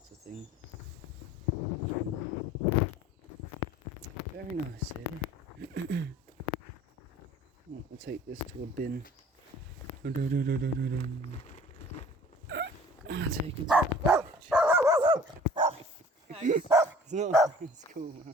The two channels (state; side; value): normal; both; correlation 0.49